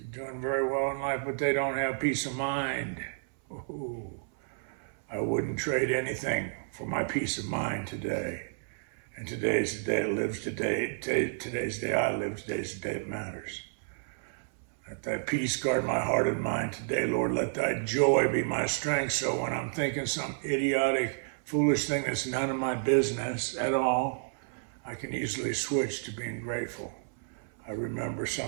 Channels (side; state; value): left; silent; 56 dB below the other